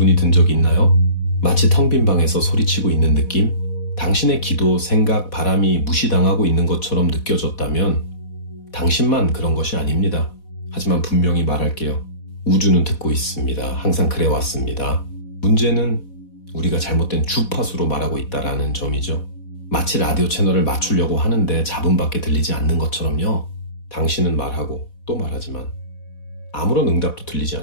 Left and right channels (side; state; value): right; late; 4.1 ms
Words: 든 적이 있나요? 마치 텅 빈 방에서 소리치고 있는 느낌? 당신의 기도, 생각, 바람이 무시당하고 있는 것처럼 느껴졌다면 당신만 그런 것이 아닙니다. 하지만 분명히 말할게요. 우주는 듣고 있습니다. 항상 그래왔습니다. 문제는 우리가 잘못된 주파수로 말하고 있다는 점이죠. 마치 라디오 채널을 맞추려고 하는데 잡음밖에 들리지 않는 것처럼요. 당신은 말하고 또 말하지만 아무런 응답도 들리지